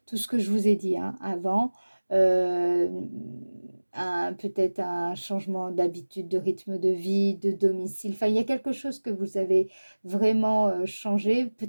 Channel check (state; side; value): inverted; both; correlation -1.00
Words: tout ce que je vous ai dit hein, avant, euh, peut-être un changement d'habitude, de rythme de vie, de domicile. Enfin, il y a quelque chose que vous avez vraiment changé.